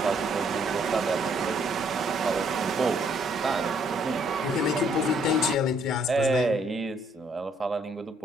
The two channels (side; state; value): both; normal; correlation 0.67